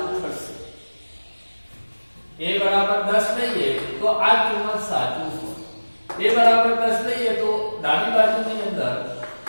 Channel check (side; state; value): both; inverted; correlation -1.00